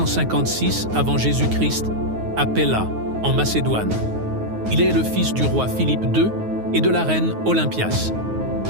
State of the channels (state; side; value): late; left; 9.5 ms